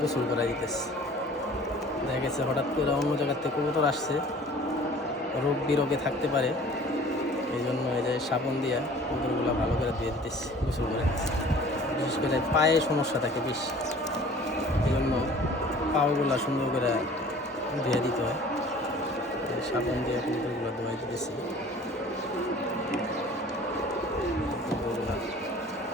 গোসল করা দিতেছে। দেখা গেছে হঠাৎ করে অন্য জায়গার থেকে কবুতর আসছে, রোগ বিরোগে থাকতে পারে, এই জন্য এই যে সাবান দিয়ে কবুতরগুলো ভালো করে ধুয়ে দিতেছি, গোসল করে দিতেছি। বিশেষ করে পায়ে সমস্যা থাকে বেশি, এই জন্য পাওগুলো সুন্দর করে ধুয়ে দিতে হয়। সাবান দিয়ে কবুতরগুলো ধোয়াই দিতেছি।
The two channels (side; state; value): both; normal; correlation 0.48